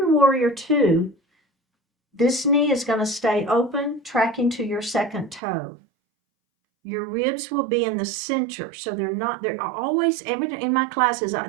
warrior two, this knee is going to stay open, tracking to your second toe. Your ribs will be in the center, so they're always, in my classes,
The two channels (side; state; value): left; drops out; at 5.4 s